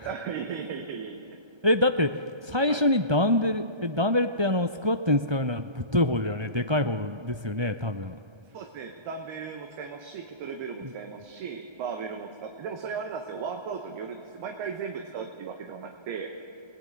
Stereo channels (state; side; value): late; left; 1.3 ms